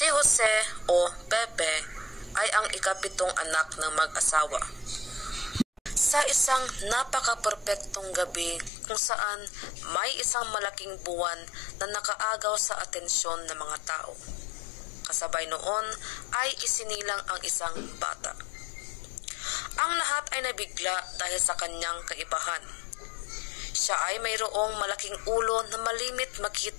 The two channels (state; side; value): drops out; right; at 8.7 s